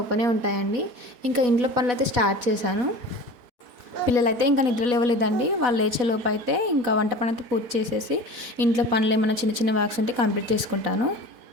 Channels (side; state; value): left; late; 4.1 ms